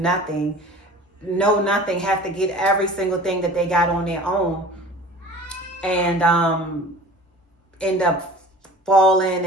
nothing, have to get every single thing that they got on their own, and end up falling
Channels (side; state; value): both; normal; correlation 0.42